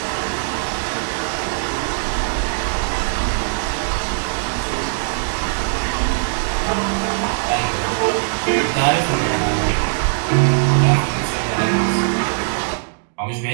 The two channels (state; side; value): silent; left; digital silence